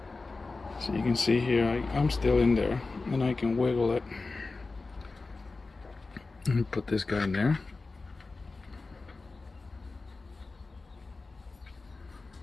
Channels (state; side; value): quieter; right; 3.7 dB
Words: so you can see here, I'm still in there, and I can wiggle it, and put this guy in there.